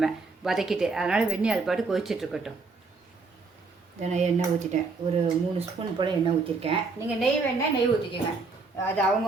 வதக்கிட்டு. அதனால் வெந்நீர் அது பாட்டு கொதிச்சிட்ருக்கட்டும். இதை நான் எண்ணெய் ஊற்றிட்டேன். ஒரு 3 ஸ்பூன் போல் எண்ணெய் ஊற்றிருக்கேன். நீங்கள் நெய் வேணால் நெய் ஊற்றிக்கோங்க. அது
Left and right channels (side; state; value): left; quieter; 4.1 dB